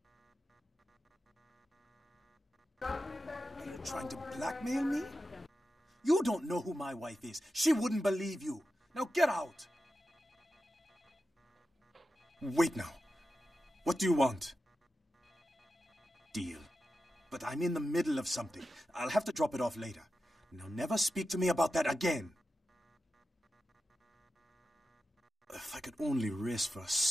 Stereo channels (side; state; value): both; normal; correlation 0.91